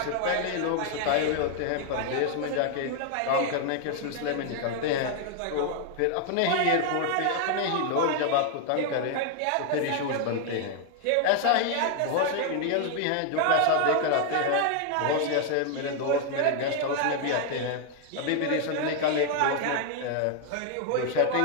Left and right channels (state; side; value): different; both; correlation 0.00